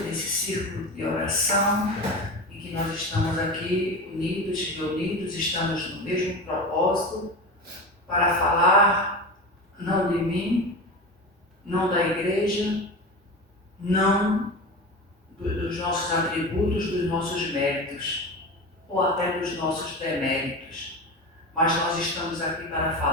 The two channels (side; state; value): both; normal; correlation 0.27